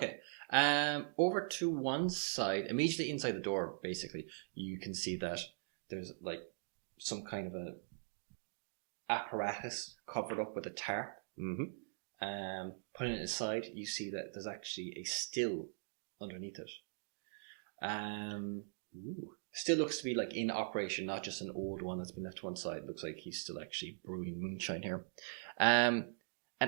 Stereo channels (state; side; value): silent; left; digital silence